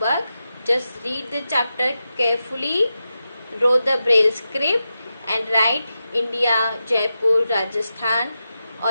Just read the chapter carefully, draw the braille script and write India, Jaipur, Rajasthan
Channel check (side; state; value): both; inverted; correlation -0.90